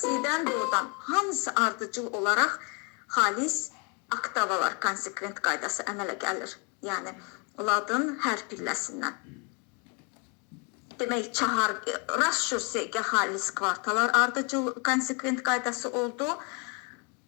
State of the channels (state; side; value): quieter; right; 30.4 dB